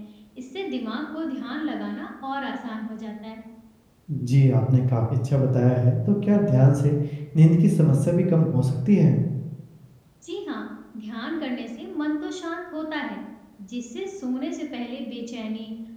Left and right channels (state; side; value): identical; both; correlation 1.00